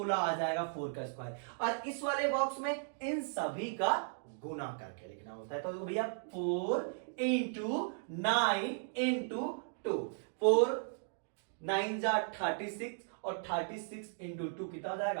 आ जाएगा 4 का स्क्वायर। और इस वाले बॉक्स में इन सभी का गुना करके लिखना होता है। तो भैया 4 इंटू 9 इंटू 2, 4 9 जा 36, और 36 इंटू 2 कितना हो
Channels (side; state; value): left; silent; digital silence